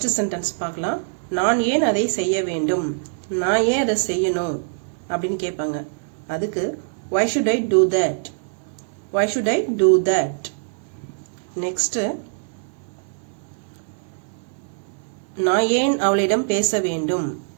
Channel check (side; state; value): left; silent; 61 dB below the other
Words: சென்டென்ஸ் பார்க்கலாம். நான் ஏன் அதை செய்ய வேண்டும், நான் ஏன் அதை செய்யணும் அப்படின்னு கேட்பாங்க. அதுக்கு why should I do that, why should I do that. Next, நான் ஏன் அவளிடம் பேச வேண்டும்,